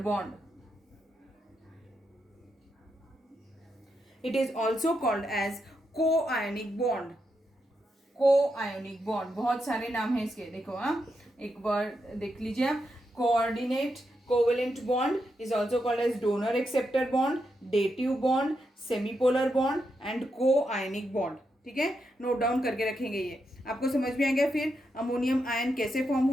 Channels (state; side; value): normal; both; correlation 0.84